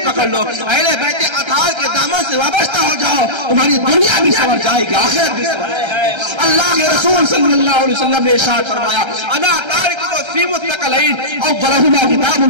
پکڑ لو, اہل بیت اطہار کے دامن سے وابستہ ہو جاؤ, تمہاری دنیا بھی سنور جائے گی, آخرت بھی سنور جائے گی. اللہ کے رسول صلی اللہ علیہ وسلم نے ارشاد فرمایا انا تارک فی متقلین اولہما کتاب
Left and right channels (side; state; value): left; late; 1.3 ms